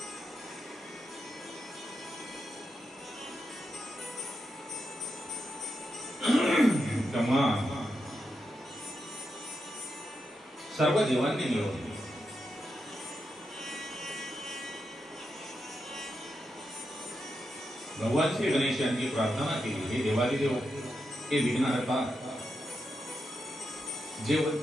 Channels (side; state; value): both; normal; correlation 0.86